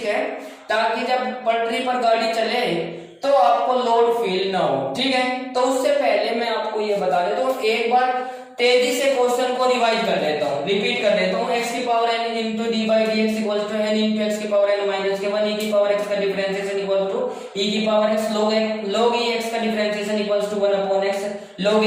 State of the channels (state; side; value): identical; both; correlation 1.00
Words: है, ताकि जब पटरी पर गाड़ी चले तो आपको लोड फील ना हो। ठीक है, तो उससे पहले मैं आपको ये बता देता हूँ, एक बार तेजी से क्वेश्चन को रिवाइज कर लेता हूँ, रिपीट कर देता हूँ। x की power n into d by d x equal to n into x की पावर n माइनस के 1 e की पावर x का डिफरेंशिएशन इक्वल टू e की power x log e x का differentiation equal to 1 upon x log a